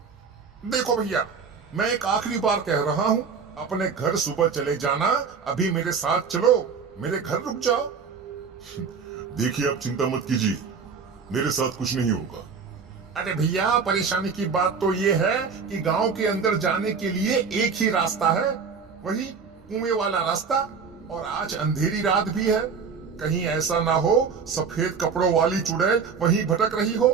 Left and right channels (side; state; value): left; quieter; 5.7 dB